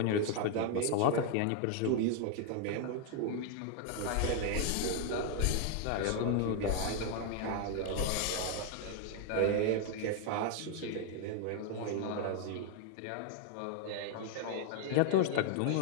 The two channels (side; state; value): both; different; correlation 0.00